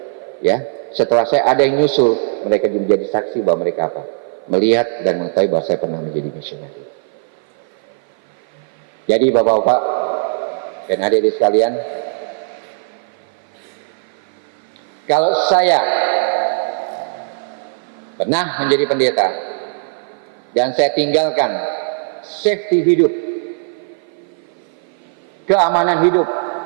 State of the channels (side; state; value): left; silent; 56 dB below the other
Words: ya, setelah saya ada yang nyusul, mereka menjadi saksi bahwa mereka apa? Melihat dan mengetahui bahwa saya pernah menjadi misionaris. Jadi Bapak-bapak dan adik-adik sekalian, kalau saya pernah menjadi pendeta dan saya tinggalkan safety hidup, keamanan hidup,